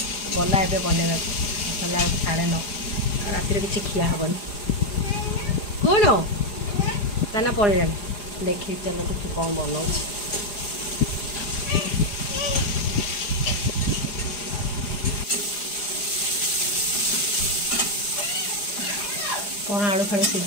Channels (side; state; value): right; late; 4.9 ms